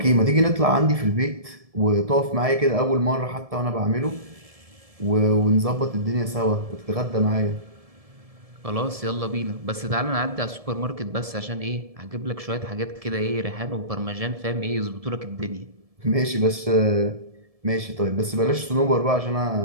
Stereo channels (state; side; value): late; left; 1.7 ms